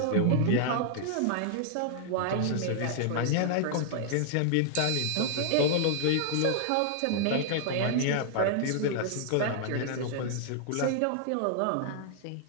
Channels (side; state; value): both; different; correlation -0.01